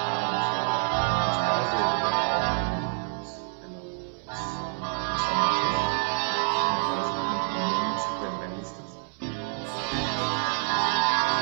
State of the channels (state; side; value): silent; left; 60 dB below the other